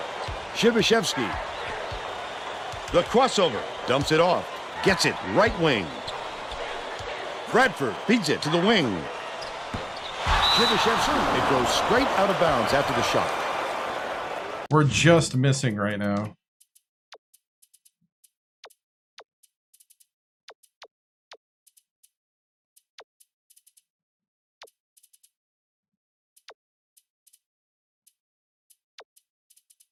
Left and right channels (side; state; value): both; identical; correlation 1.00